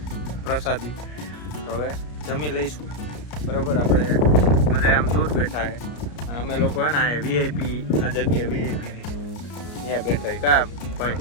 પ્રસાદી, તો હવે જમી લઈશું. બરાબર, આપણે બધા આમ દૂર બેઠા છે અને અમે લોકો હે ને વીઆઈપી આ જગ્યા વીઆઈપીની ત્યાં બેઠા છે. કા ભાઈ?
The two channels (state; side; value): late; right; 33 ms